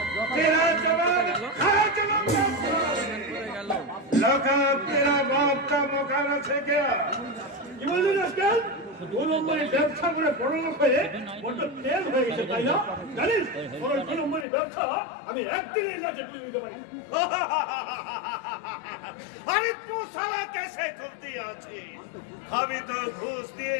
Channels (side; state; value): right; drops out; at 14.5 s